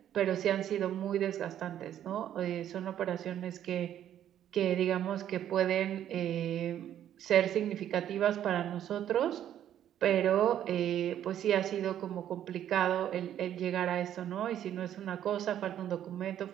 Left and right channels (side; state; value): left; quieter; 10.8 dB